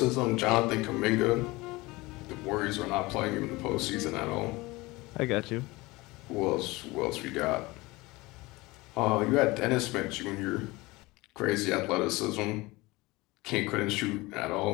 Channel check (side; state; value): right; quieter; 21.9 dB